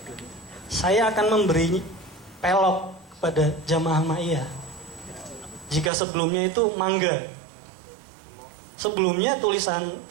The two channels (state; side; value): drops out; left; at 5.9 s